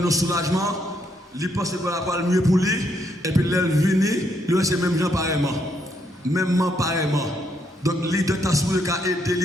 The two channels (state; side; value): normal; both; correlation 0.74